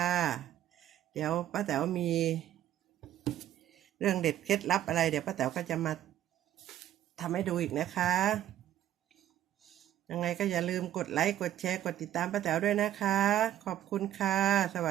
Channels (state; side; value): quieter; left; 12.1 dB